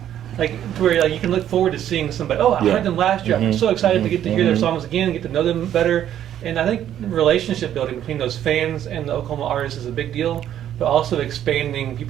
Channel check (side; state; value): left; quieter; 10.9 dB